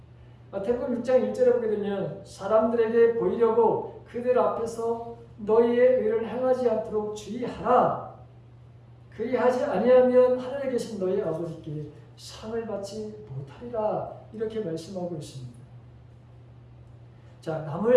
마태복음 6장 1절에 보게 되면 사람들에게 보이려고 그들 앞에서 너희의 의를 행하지 않도록 주의하라. 그리하지 아니하면 하늘에 계신 너희 아버지께 상을 받지 못하리라. 이렇게 말씀하고 있습니다. 자,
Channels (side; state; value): both; identical; correlation 1.00